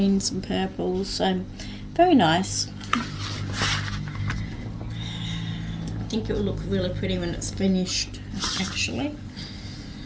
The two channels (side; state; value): both; identical; correlation 1.00